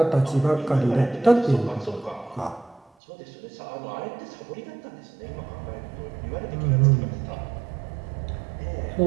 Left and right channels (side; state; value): left; drops out; at 2.9 s